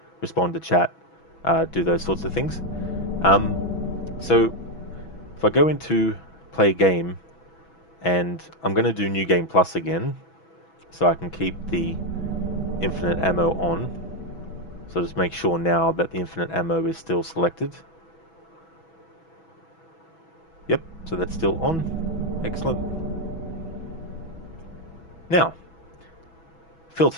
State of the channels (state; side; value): late; right; 6.1 ms